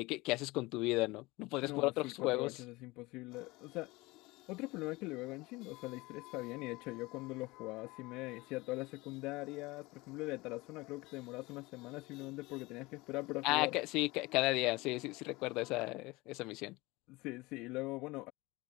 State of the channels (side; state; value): right; quieter; 22.1 dB